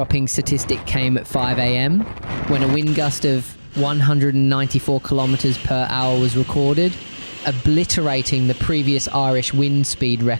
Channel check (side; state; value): both; inverted; correlation -1.00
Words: statistic came at 5 a.m. when a wind gust of 194 kilometres per hour was recorded, obliterating the previous Irish wind speed